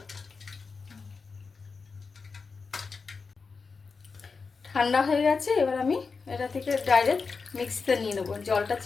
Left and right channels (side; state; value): right; quieter; 4.8 dB